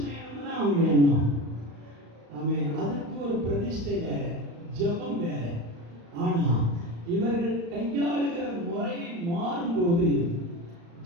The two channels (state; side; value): late; left; 35 ms